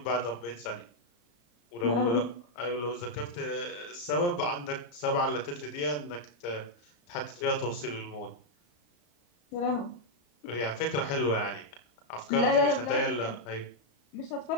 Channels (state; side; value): late; right; 34 ms